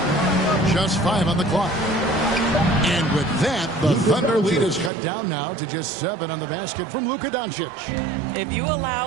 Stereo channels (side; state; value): left; drops out; at 4.9 s